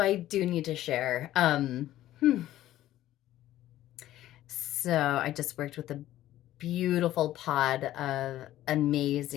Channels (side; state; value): right; quieter; 13.9 dB